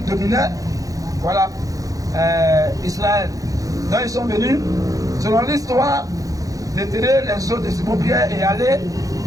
dominaient, voilà, Israël. Donc ils sont venus, selon l'histoire, déterrer les os de Simon Pierre et aller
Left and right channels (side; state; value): left; late; 0.17 ms